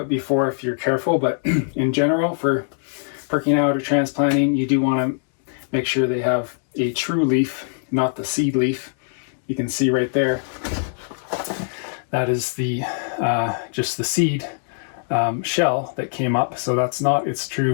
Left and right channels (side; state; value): right; silent; digital silence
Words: it before if you're careful, but in general, for pricking out or transplanting, you do want to make sure they have a true leaf, not the seed leaf. You can see right there, that is the just the seed shell that came up, so that's not its